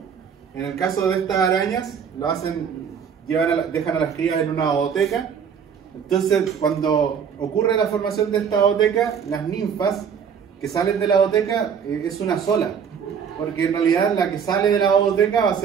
En el caso de estas arañas, lo hacen, dejan a las crías en una ooteca. Entonces, cuando ocurre la formación de esta ooteca, las ninfas que salen de la ooteca es una sola, porque en realidad la que sale de la ooteca va a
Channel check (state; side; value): quieter; left; 7.2 dB